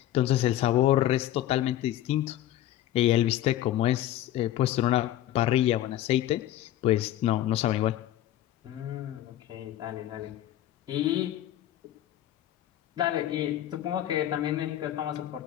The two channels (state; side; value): quieter; right; 13.2 dB